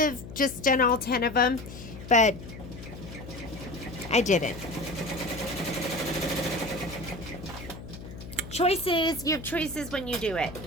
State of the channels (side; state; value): left; noise; hum, 12 dB below the sound